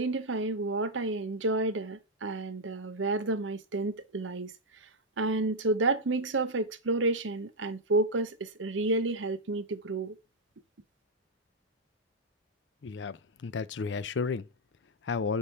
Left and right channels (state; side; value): normal; both; correlation -0.01